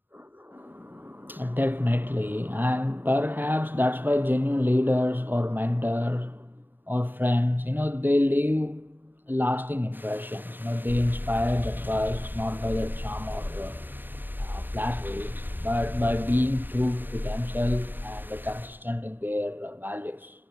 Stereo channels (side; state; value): left; late; 0.093 ms